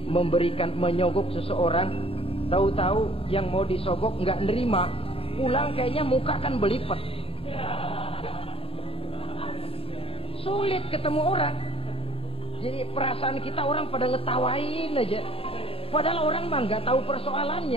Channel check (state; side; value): late; right; 0.27 ms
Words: menyogok seseorang, tahu-tahu yang mau disogok nggak nerima, pulang kayaknya muka kan belipet. Sulit ketemu orang. Jadi perasaan kita orang pada ngetawain aja. Padahal orang mah nggak tahu